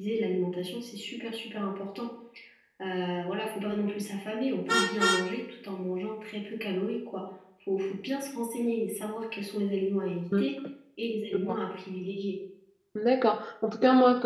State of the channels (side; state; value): both; identical; correlation 1.00